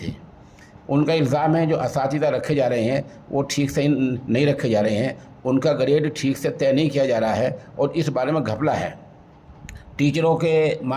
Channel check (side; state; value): both; identical; correlation 1.00